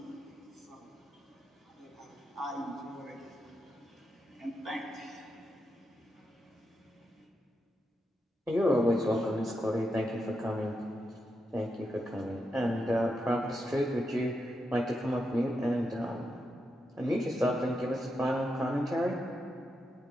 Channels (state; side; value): normal; both; correlation 0.85